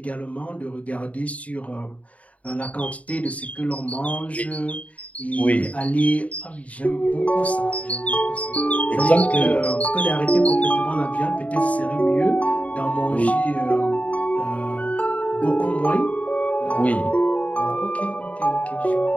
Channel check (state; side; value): late; right; 0.068 ms